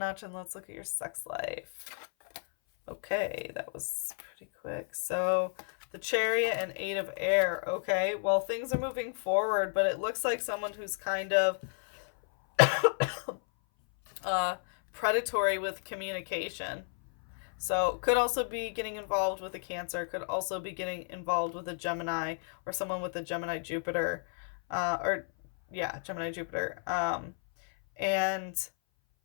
and let's look at your sex life. Okay, that was pretty quick. So, the Chariot and 8 of air. Okay, well, things are moving forward, but it looks like someone who's kind of predatory with communication. So, could also be getting involved with a Cancer, could also be getting involved with a Gemini, or someone with a Gemini Jupiter. Gemini Jupiter. And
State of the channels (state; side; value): silent; right; 56 dB below the other